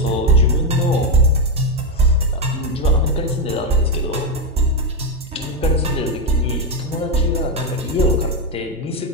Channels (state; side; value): normal; both; correlation 0.07